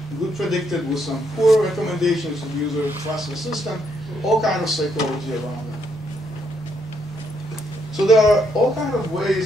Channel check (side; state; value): both; normal; correlation 0.74